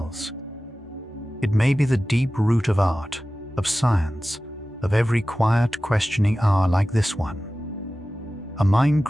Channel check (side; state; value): both; normal; correlation 0.96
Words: It may be the deep root of art, of science, of every quiet, questioning hour like this one. A mind